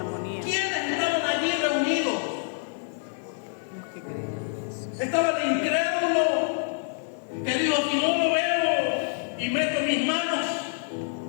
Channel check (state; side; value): silent; right; digital silence